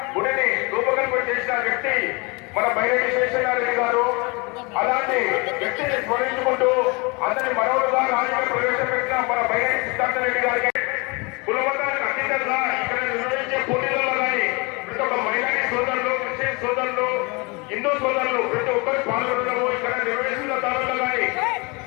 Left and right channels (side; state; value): right; quieter; 28.6 dB